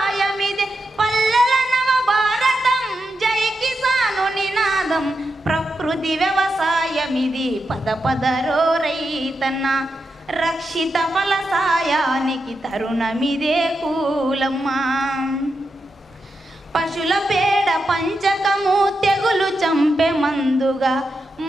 పల్లెల నవ భారతం జై కిసాను నినాదం, ప్రకృతి వ్యవసాయమిది పద పదరో రైతన్న, రక్షిత ఫలసాయానికి తరుణమిదే కూలమ్మ, పశుల పేడ పంచకము తెగులు చంపే మందుగా,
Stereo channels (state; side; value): normal; both; correlation 0.87